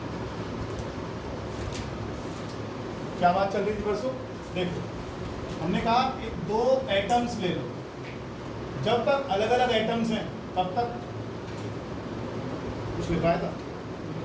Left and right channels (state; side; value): identical; both; correlation 1.00